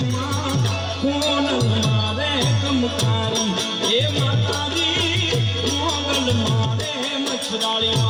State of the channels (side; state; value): both; identical; correlation 1.00